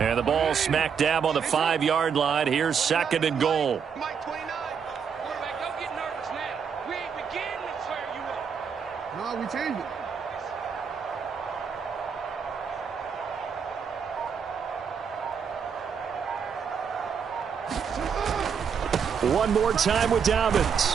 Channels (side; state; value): left; quieter; 6.8 dB